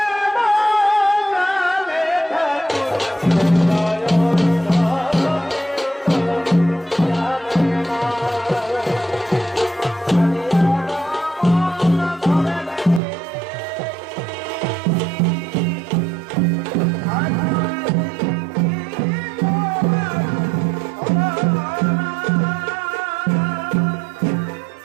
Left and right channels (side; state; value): left; drops out; at 13.0 s